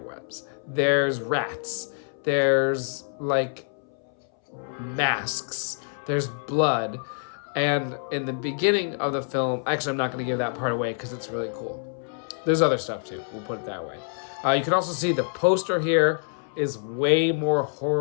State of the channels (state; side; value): silent; right; 61 dB below the other